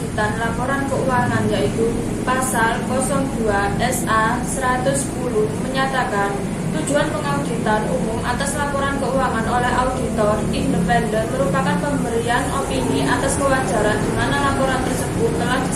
laporan keuangan yaitu Pasal 02 SA 110 menyatakan tujuan pengauditan umum atas laporan keuangan oleh auditor independen merupakan pemberian opini atas kewajaran di mana laporan tersebut telah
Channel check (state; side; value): identical; both; correlation 1.00